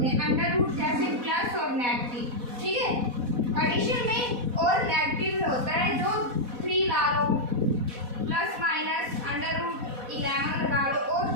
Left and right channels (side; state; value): left; late; 4.1 ms